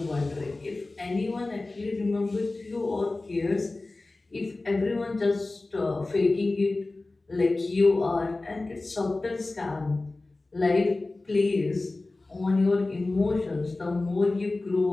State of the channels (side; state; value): right; quieter; 3.2 dB